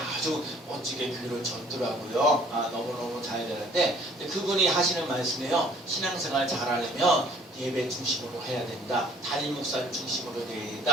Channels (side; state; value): both; normal; correlation 0.57